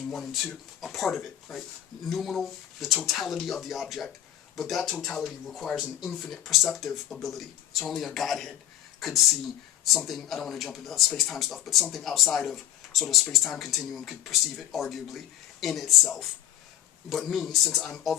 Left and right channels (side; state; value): right; quieter; 11.9 dB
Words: 1 and 2, a part of it, right? Noumenal, the totality of the object, but that totality requires an infinite perceptive ability. So only a Godhead could see something, I don't want to jump into space-time stuff, but something outside of sort of space-time continuum could perceive it, arguably, in itself. But me, since I'm